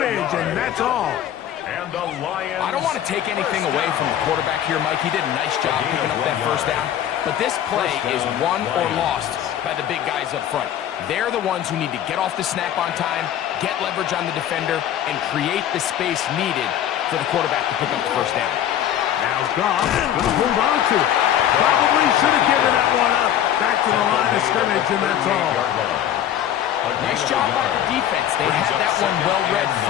and that's all. And the Lions. I don't want to take anything away from the quarterback here, Mike. He did a nice job picking up that 1st down. But this play is won or lost by the big guys up front. They're the ones who need to get off the snap on time, get leverage on the defender, and create the space needed for the quarterback to pick up the 1st down. Now Goff going to hold on to it. Probably should have given that one up. Back to the line of scrimmage, and that's all. Nice job by the defense. They had that one well read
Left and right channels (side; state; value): right; quieter; 10.8 dB